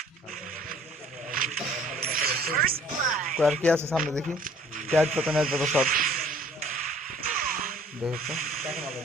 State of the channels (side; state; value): both; normal; correlation 0.55